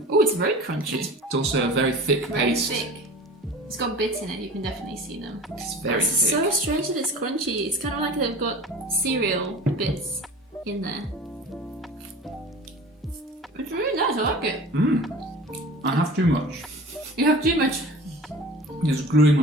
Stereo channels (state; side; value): normal; both; correlation 0.39